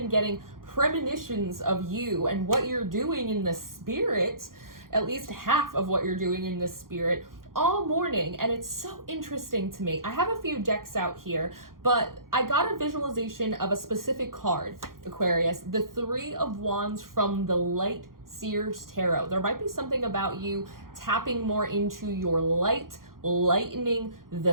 getting premonitions of you and what you're doing in the spirit, at least half of what you're doing in the spirit, all morning, and it's so interesting to me. I have a few decks out here, but I got a visualization of a specific card, Aquarius, the Three of Wands from the Light Seers Tarot. There might be something about you tapping more into your light, lightening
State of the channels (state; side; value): late; left; 0.91 ms